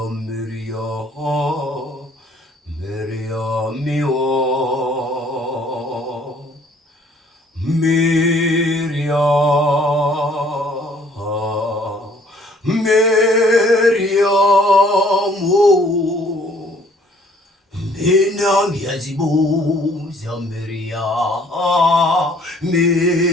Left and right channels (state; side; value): normal; both; correlation 0.59